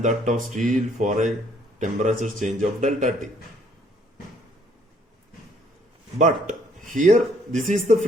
that of steel for a temperature change of delta T. But here, this is the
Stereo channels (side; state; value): both; normal; correlation 0.64